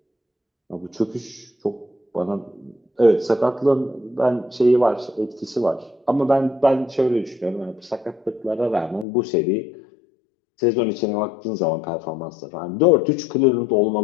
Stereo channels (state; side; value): drops out; right; at 9.1 s